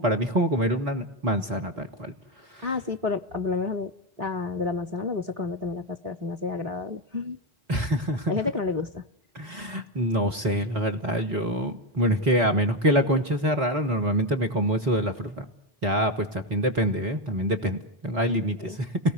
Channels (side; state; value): left; late; 4.1 ms